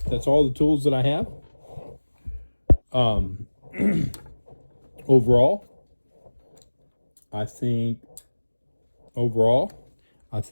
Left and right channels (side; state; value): both; inverted; correlation -1.00